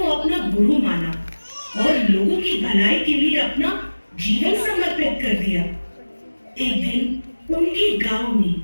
अपना गुरु माना और लोगों की भलाई के लिए अपना जीवन समर्पित कर दिया। एक दिन उनके गांव में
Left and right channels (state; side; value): inverted; both; correlation -1.00